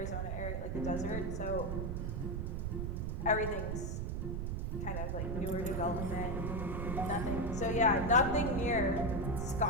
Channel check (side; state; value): right; noise; rumble, 2 dB below the sound